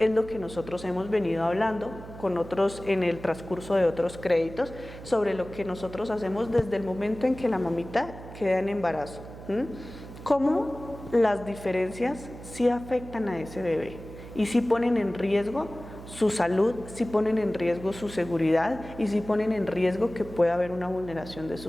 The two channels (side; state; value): right; noise; hum, 14 dB below the sound